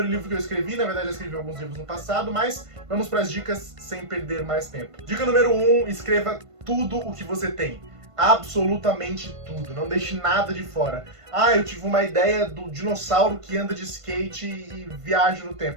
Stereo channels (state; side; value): late; left; 1.5 ms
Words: livro que eu escrevi, na verdade eu escrevi alguns livros no passado, mas vamos para as dicas sem perder mais tempo. Dica número 1, escreva tudo o que você tem. Absolutamente tudo, não deixe nada de fora. Ah, eu tive uma ideia do dinossauro que anda de skate e viaja no